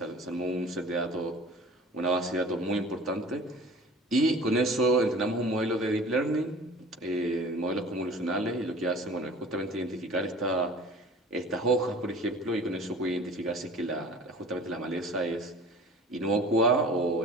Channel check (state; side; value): normal; both; correlation 0.44